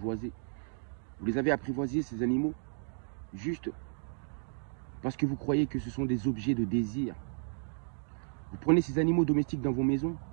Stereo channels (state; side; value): silent; left; digital silence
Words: Vous les avez apprivoisés, ces animaux, juste parce que vous croyez que ce sont des objets de désir. Vous prenez ces animaux domestiques dans vos maisons,